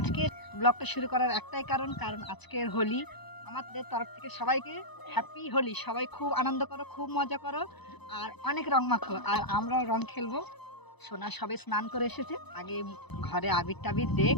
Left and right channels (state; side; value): late; right; 0.99 ms